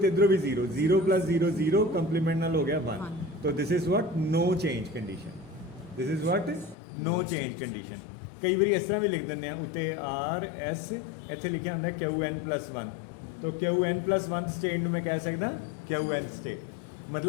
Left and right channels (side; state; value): right; drops out; at 6.8 s